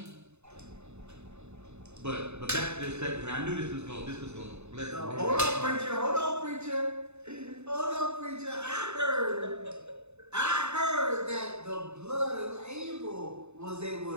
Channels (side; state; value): left; late; 0.81 ms